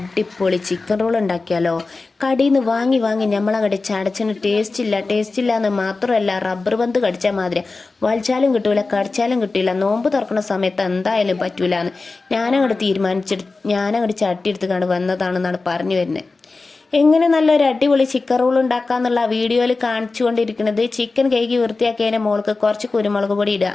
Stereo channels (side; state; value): right; quieter; 3.8 dB